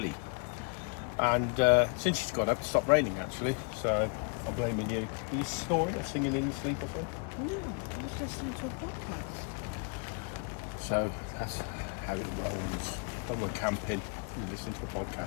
And since she's got up, it stopped raining actually, so I'm blaming you. Are you snoring or singing in your sleep or something? No, I was listening to a podcast. So that's how it rolls. When we're camping, we listen to a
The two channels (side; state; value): right; quieter; 37.3 dB